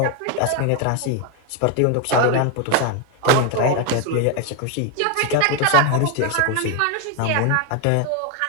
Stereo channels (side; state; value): both; different; correlation 0.01